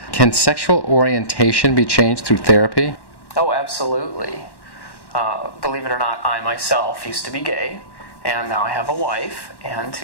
can sexual orientation be changed through therapy? Oh, absolutely. Believe it or not, I myself used to be gay. And now I have a wife and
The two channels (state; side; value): late; right; 1.1 ms